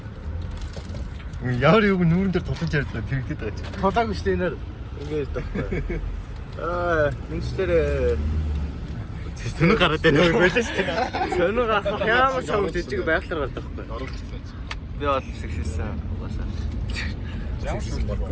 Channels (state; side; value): identical; both; correlation 1.00